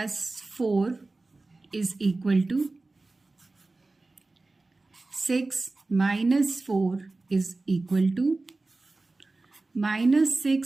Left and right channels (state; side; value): quieter; left; 3.3 dB